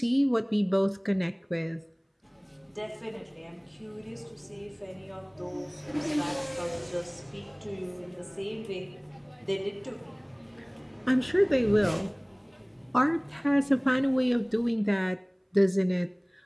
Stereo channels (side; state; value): both; identical; correlation 1.00